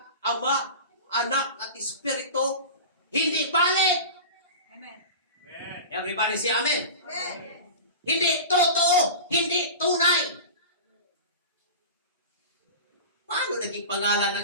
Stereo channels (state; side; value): inverted; both; correlation -0.31